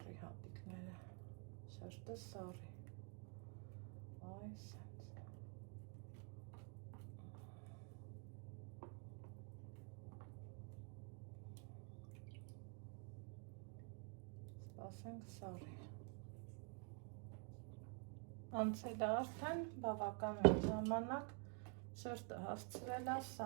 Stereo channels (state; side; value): quieter; left; 37.7 dB